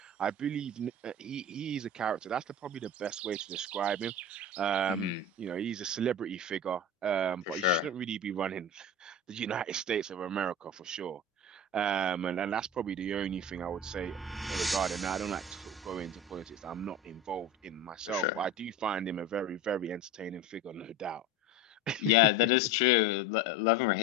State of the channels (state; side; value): normal; both; correlation 0.30